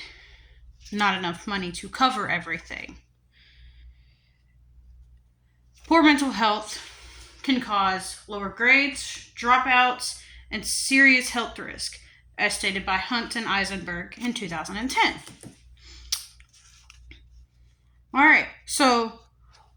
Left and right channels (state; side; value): identical; both; correlation 1.00